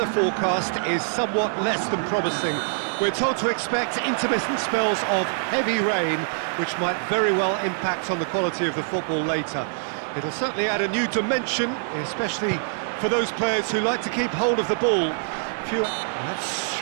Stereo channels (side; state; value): left; silent; digital silence